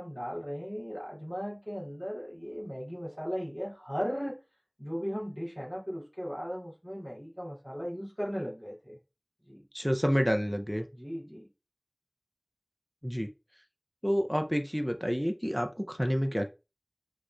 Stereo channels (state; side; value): identical; both; correlation 1.00